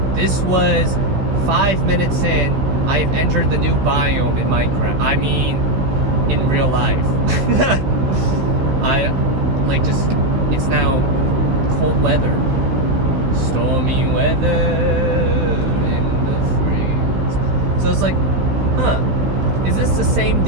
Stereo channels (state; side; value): late; left; 16 ms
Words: this was 5 minutes in. I have entered the new biome in Minecraft. I mean, in real life. It's now cold weather. Stormy weather in the freeze. So it's like, huh, is this the same